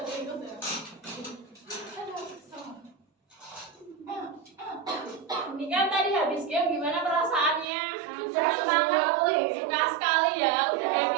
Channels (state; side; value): drops out; left; at 7.7 s